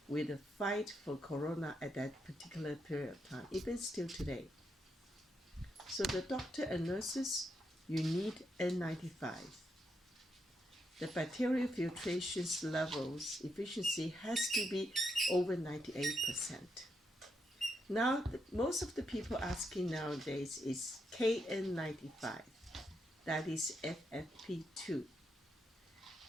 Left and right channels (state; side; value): normal; both; correlation 0.81